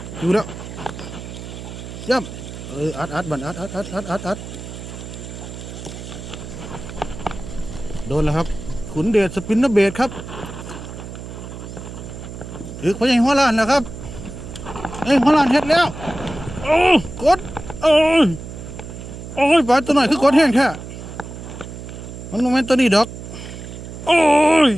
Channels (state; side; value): noise; right; hum, 11 dB below the sound